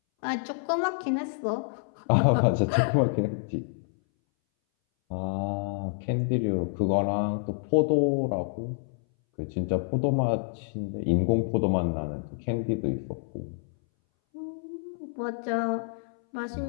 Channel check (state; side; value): silent; right; 59 dB below the other